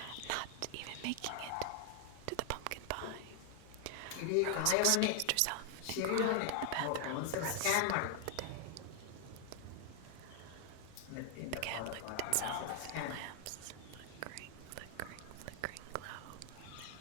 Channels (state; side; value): different; both; correlation 0.00